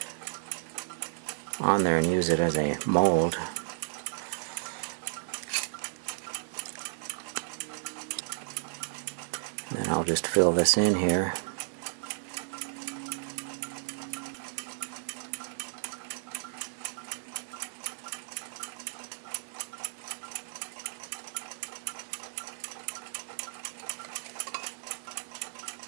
on there and use it as a mold. And then I'll just fill this in here.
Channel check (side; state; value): left; silent; digital silence